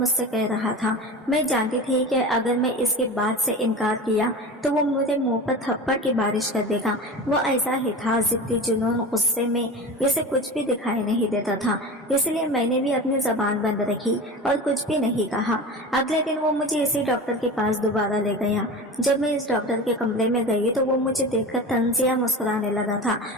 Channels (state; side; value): normal; both; correlation 0.31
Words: कह रहा था, मैं जानती थी कि अगर मैं इसके बात से इनकार किया तो वो मुझे मुंह पर थप्पड़ की बारिश कर देगा। वो ऐसा ही था, जिद्दी, जुनून, गुस्से में इसे कुछ भी दिखाई नहीं देता था। इसलिए मैंने भी अपनी जबान बंद रखी और कुछ भी नहीं कहा। अगले दिन वो मुझे इसी डॉक्टर के पास दोबारा ले गया। जब मैं इस डॉक्टर के कमरे में गई तो वो मुझे देखकर तंजिया मुस्कुराने लगा था।